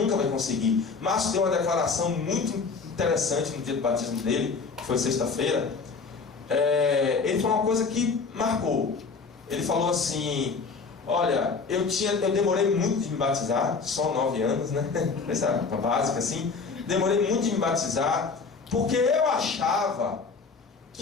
vai conseguir. Márcio deu uma declaração muito interessante no dia do batismo dele, que foi sexta-feira. Ele falou uma coisa que marcou. Ele falou assim: olha, eu demorei muito de me batizar, só 9 anos, né? Essa básica assim. Demorei muito de me batizar, porque eu achava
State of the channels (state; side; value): quieter; right; 4.8 dB